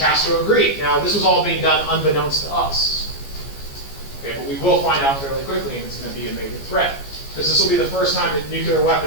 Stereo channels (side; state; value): right; late; 14 ms